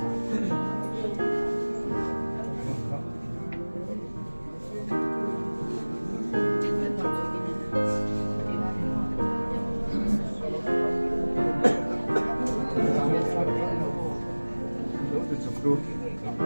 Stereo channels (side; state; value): both; inverted; correlation -1.00